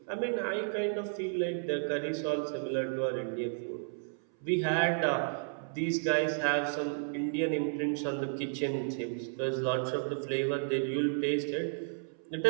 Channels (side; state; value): left; silent; 56 dB below the other